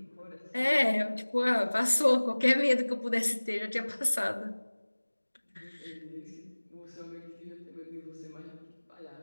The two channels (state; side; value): inverted; both; correlation -1.00